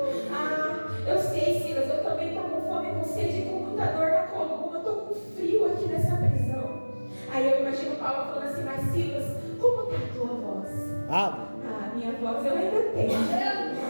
Eu sei, Silas, eu também estou com fome, com sede e com muita dor na coluna. Eu estou com frio aqui nessa prisão. Aí eu imagino Paulo falando assim, mas Silas, como está a tua voz? Minha voz eu ainda tenho.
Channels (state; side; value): inverted; both; correlation -1.00